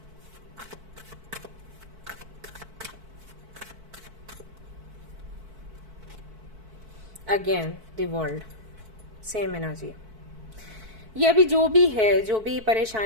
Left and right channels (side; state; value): left; late; 4.6 ms